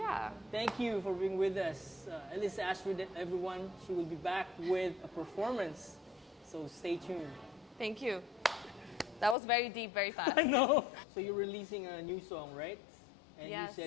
Thank you for being with us. Elisa Astrid, everyone, she will be back with a performance. So stay tuned. Thank you. That was very deep, very fast. I know. So you're releasing a new song, right? And Yes. you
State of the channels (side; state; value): right; drops out; at 9.3 s